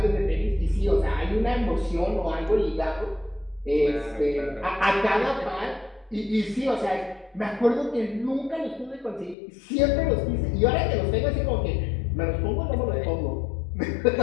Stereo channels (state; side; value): drops out; right; at 9.3 s